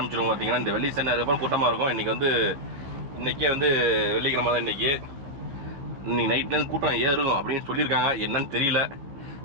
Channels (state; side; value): late; left; 15 ms